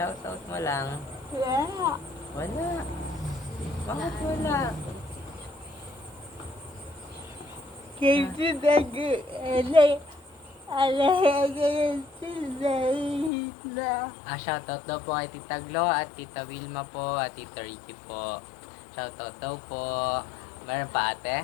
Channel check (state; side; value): drops out; right; at 13.3 s